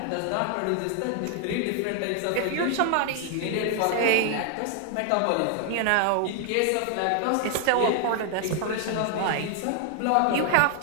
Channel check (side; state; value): both; different; correlation 0.00